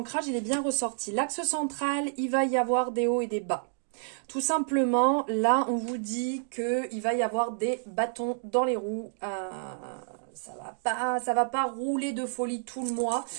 il est bien ressorti. L'axe central, il va y avoir des hauts et des bas. Tout simplement, là, on vous dit qu'il va y avoir des bâtons dans les roues. Ça va pas rouler de folie tout le mois.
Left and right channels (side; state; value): left; silent; digital silence